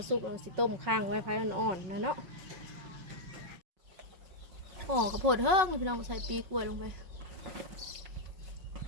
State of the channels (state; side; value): late; left; 5.4 ms